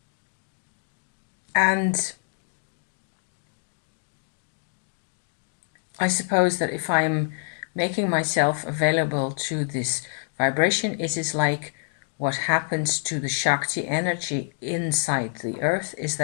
And I suppose that if I'm making myself available to this vibration, it is like what happens to the Shakti energy inside the earth is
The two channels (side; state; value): right; silent; 61 dB below the other